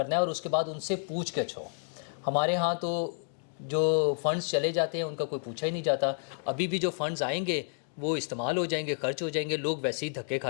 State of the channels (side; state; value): right; silent; digital silence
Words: ہے، اور اس کے بعد ان سے پوچھ گچھ ہو. ہمارے ہاں تو جو فنڈز چلے جاتے ہیں ان کا کوئی پوچھا ہی نہیں جاتا. ابھی بھی جو فنڈز آئیں گے وہ استعمال ہو جائیں گے، خرچ ہو جائیں گے، لوگ ویسے ہی دھکے